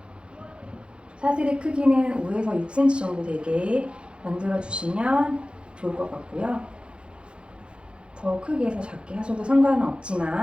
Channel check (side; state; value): left; late; 0.056 ms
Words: 사슬의 크기는 5에서 6cm 정도 되게 만들어주시면 좋을 것 같고요. 더 크게 해서 작게 하셔도 상관은